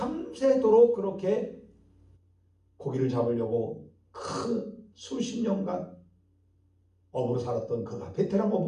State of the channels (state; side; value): identical; both; correlation 1.00